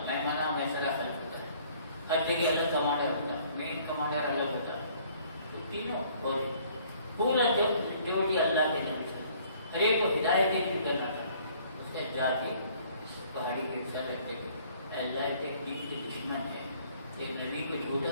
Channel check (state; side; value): inverted; both; correlation -0.58